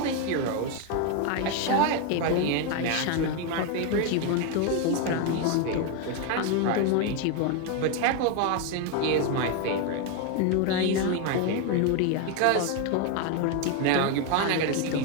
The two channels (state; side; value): different; both; correlation 0.01